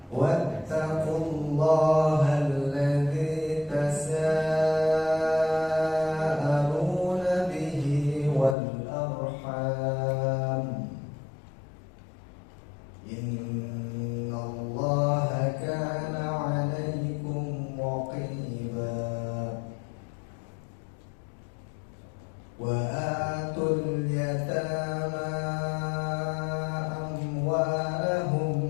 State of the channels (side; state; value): right; drops out; at 8.6 s